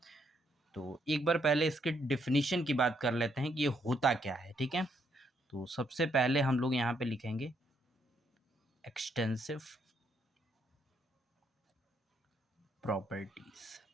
तो एक बार पहले इसके डिफिनीशन की बात कर लेते हैं कि ये होता क्या है। ठीक है, तो सबसे पहले हम लोग यहाँ पे लिखेंगे एक्सटेंसिव प्रॉपर्टीज।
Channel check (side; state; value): both; normal; correlation 0.74